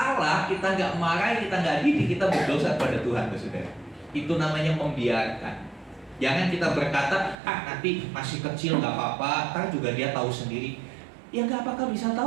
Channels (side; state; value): left; drops out; at 7.4 s